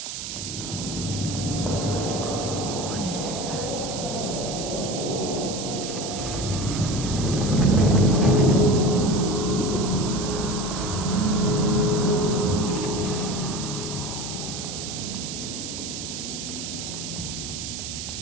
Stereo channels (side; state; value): right; noise; hiss, 7 dB below the sound